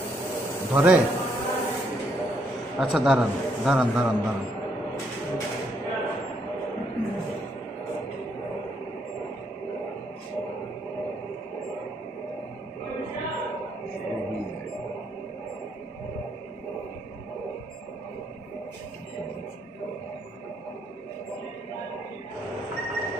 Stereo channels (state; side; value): normal; both; correlation 0.73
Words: ধরে। আচ্ছা দাঁড়ান দাঁড়ান দাঁড়ান দাঁড়ান,